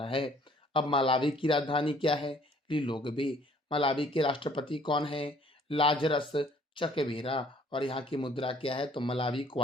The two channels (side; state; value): both; normal; correlation 0.58